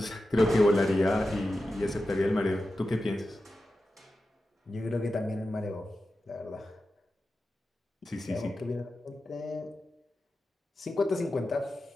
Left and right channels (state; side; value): normal; both; correlation 0.92